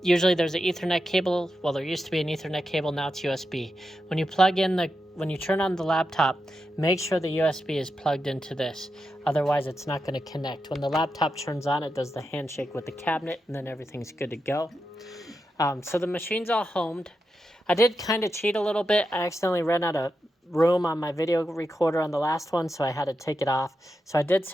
usually there's an Ethernet cable. Well, there used to be an Ethernet cable, now it's USB. When you turn on the laptop, make sure the USB is plugged into this. Otherwise, it's not going to connect. When the laptop turns on, it does the handshake with the cabinet, and then everything's good to go. So the machine's all homed. I did kind of cheat a little bit. I accidentally ran out of room on my video recorder on the last one, so I had to take it off. So I did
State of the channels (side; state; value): both; normal; correlation 0.88